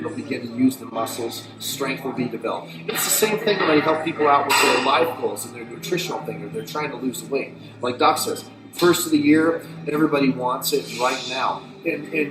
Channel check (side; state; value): both; identical; correlation 1.00